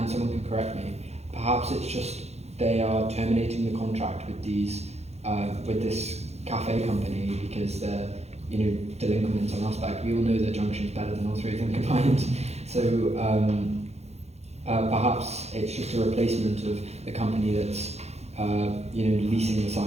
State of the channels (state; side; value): late; left; 0.31 ms